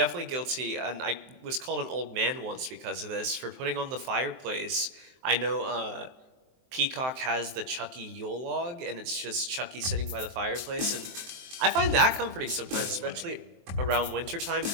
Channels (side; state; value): left; late; 23 ms